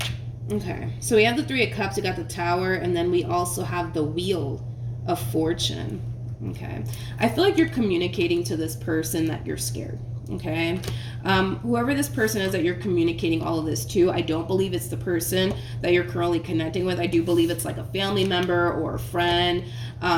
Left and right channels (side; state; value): both; identical; correlation 1.00